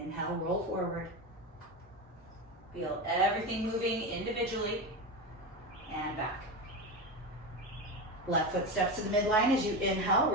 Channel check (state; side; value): normal; both; correlation 0.19